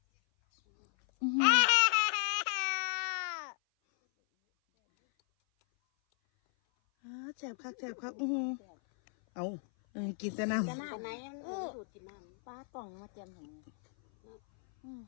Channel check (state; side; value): silent; right; 55 dB below the other